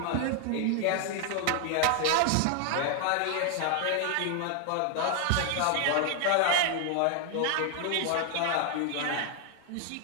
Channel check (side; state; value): both; different; correlation 0.00